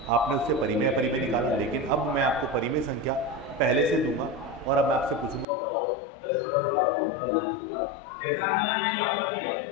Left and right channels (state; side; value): drops out; right; at 5.5 s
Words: आपने उससे परिमेय अपरिमेय निकाला, लेकिन अब मैं आपको परिमेय संख्या पहले से दूंगा और अब मैं आपसे पूछूंगा बताओ दशमलव का कौन सा रूप होगा। जैसे एग्जाम्पल की बात